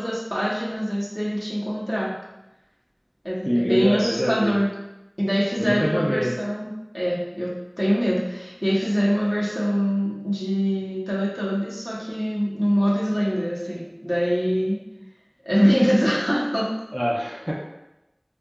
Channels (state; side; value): identical; both; correlation 1.00